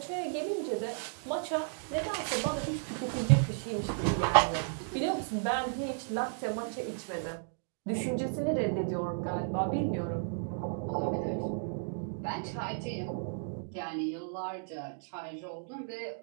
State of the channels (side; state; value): left; silent; digital silence